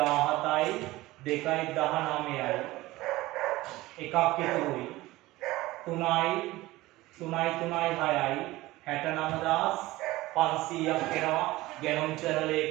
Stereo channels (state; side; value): quieter; left; 18.5 dB